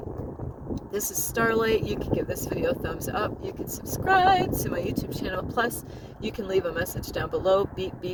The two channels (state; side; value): identical; both; correlation 1.00